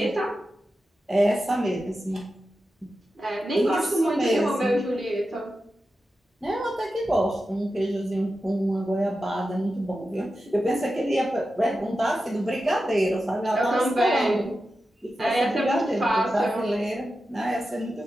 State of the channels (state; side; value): normal; both; correlation 0.91